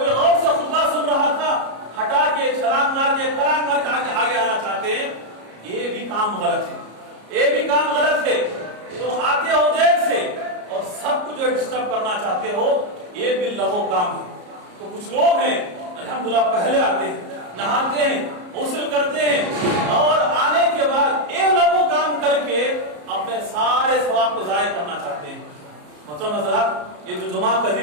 غور سے خطبہ سن رہا تھا، ہٹا کے چھلانگ مار کے پھلانگ مار کے آگے آنا چاہتے ہیں، یہ بھی کام غلط ہے، یہ بھی کام غلط ہے۔ تم آتے ہو دیر سے اور سب کو جو ڈسٹرب کرنا چاہتے ہو، یہ بھی لغو کام ہے۔ تو کچھ لوگ ہیں الحمدللہ پہلے آتے ہیں، نہاتے ہیں، غسل کرتے ہیں اور آنے کے بعد یہ لغو کام کر کے اپنے سارے ثواب کو ضائع کرنا چاہتے ہیں۔ محترم حضرات، یہ جو جمعہ کا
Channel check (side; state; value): left; late; 34 ms